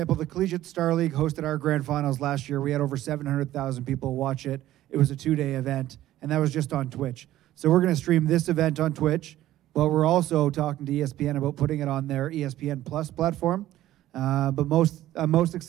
the Collegiate Star League hosted our grand finals last year. We had over 700,000 people watch it. It was a 2-day event, and that was just on Twitch. So we're going to stream this event on Twitch, but we're also talking to ESPN about putting it on their ESPN Plus platform. But I'm most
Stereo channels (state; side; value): quieter; left; 14.1 dB